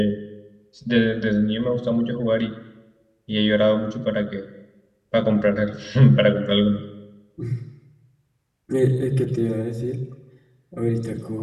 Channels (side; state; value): both; identical; correlation 1.00